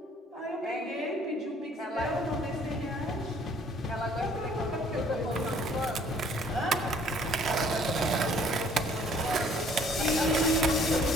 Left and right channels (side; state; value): both; normal; correlation 0.58